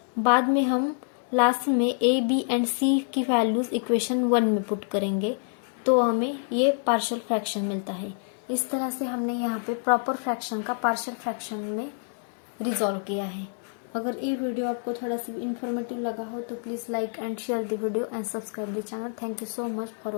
बाद में हम लास्ट में a, b एंड c की वैल्यूज इक्वेशन 1 में पुट करेंगे तो हमें ये पार्शियल फ्रैक्शन मिलता है। इस तरह से हमने यहाँ पे प्रॉपर फ्रैक्शन का पार्शियल फ्रैक्शन में रिजॉल्व किया है। अगर ये वीडियो आपको थोड़ा सा इन्फॉर्मेटिव लगा हो तो please like and share the video and subscribe the channel. Thank you so much for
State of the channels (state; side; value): silent; right; 60 dB below the other